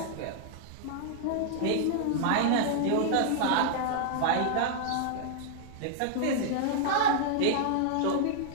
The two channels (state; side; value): different; both; correlation -0.01